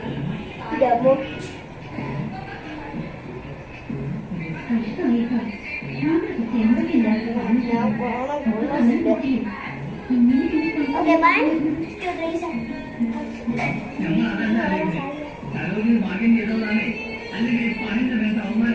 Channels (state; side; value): identical; both; correlation 1.00